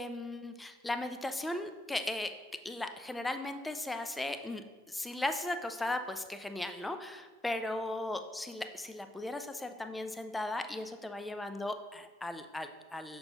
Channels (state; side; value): normal; both; correlation 0.82